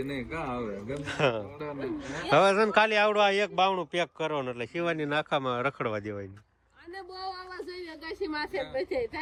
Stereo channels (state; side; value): identical; both; correlation 1.00